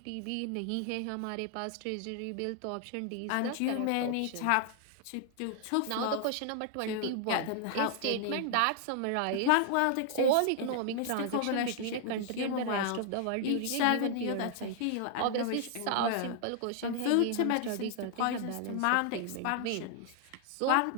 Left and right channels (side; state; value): both; different; correlation 0.00